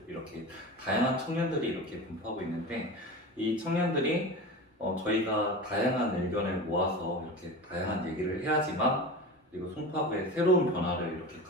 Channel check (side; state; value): both; normal; correlation 0.30